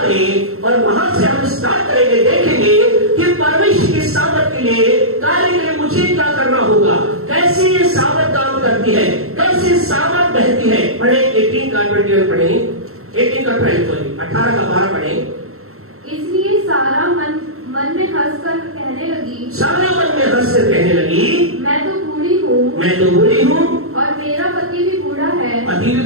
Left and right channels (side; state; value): left; late; 0.63 ms